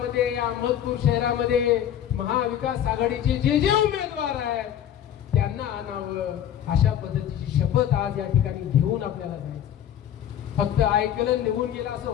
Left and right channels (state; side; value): quieter; right; 10.3 dB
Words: या अहमदपूर शहरामध्ये महाविकास आघाडीचे जे उमेदवार आहेत त्यांना आणावं, अशा पद्धतीची शपथ आज या ठिकाणी घेऊन आपल्याला जायचं. फक्त ऐकलं निघून गेलं असं